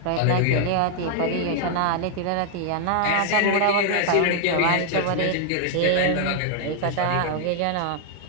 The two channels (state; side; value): different; both; correlation 0.00